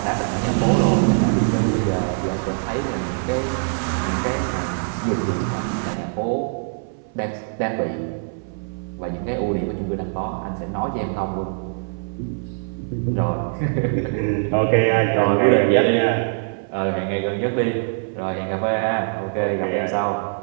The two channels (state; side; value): silent; left; 58 dB below the other